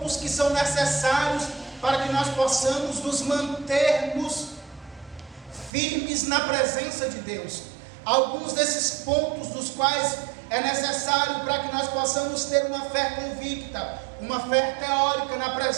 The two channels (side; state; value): left; drops out; at 5.7 s